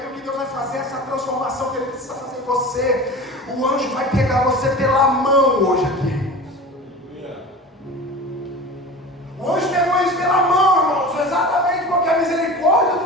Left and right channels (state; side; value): normal; both; correlation 0.35